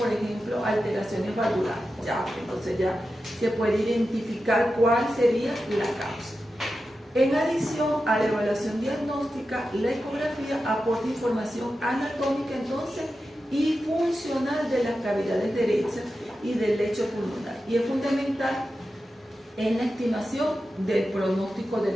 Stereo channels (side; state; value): both; normal; correlation 0.91